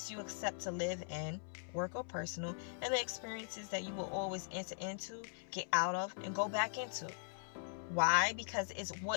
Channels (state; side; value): silent; right; 51 dB below the other